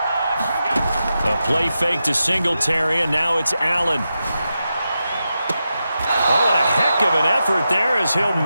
A play fake to Singletary, and now it's Allen. Oh, and a heck of an effort there as he'll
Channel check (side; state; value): both; inverted; correlation -0.89